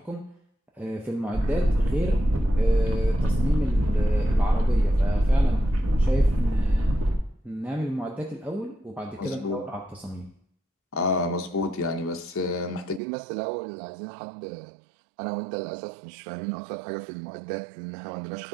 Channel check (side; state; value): left; drops out; at 13.0 s